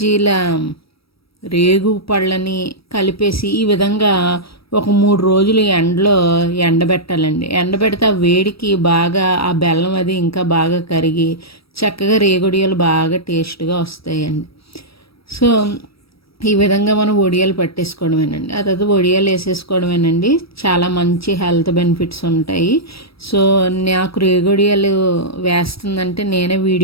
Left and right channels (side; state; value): right; late; 0.76 ms